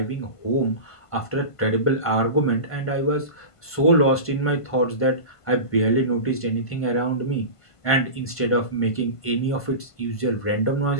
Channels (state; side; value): late; right; 1.5 ms